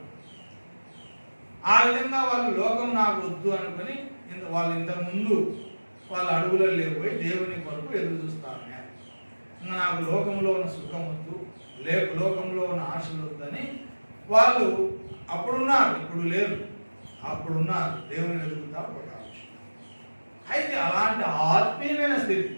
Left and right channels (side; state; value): both; inverted; correlation -1.00